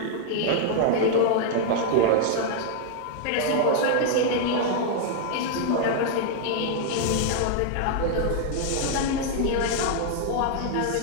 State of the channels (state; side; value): different; both; correlation -0.01